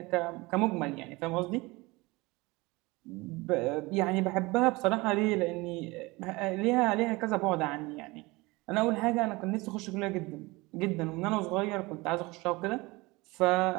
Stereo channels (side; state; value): left; quieter; 23.0 dB